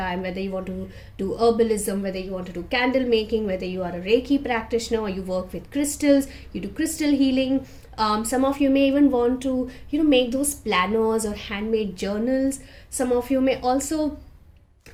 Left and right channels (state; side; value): identical; both; correlation 1.00